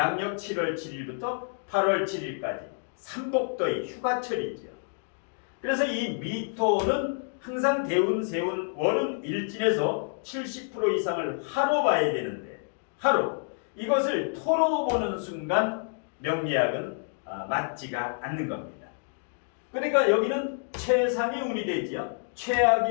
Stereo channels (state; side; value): silent; right; 59 dB below the other